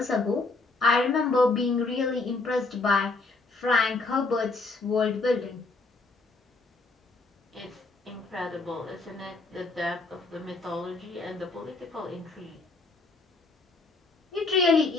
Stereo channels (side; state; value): right; quieter; 3.6 dB